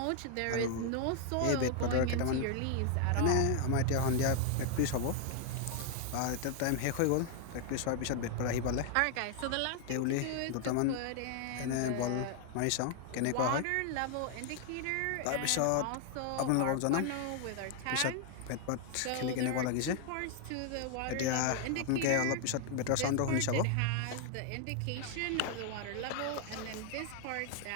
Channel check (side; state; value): both; different; correlation 0.00